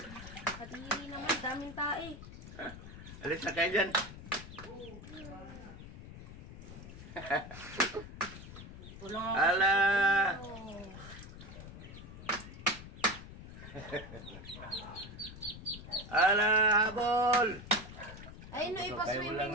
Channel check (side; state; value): left; noise; rumble, 13 dB below the sound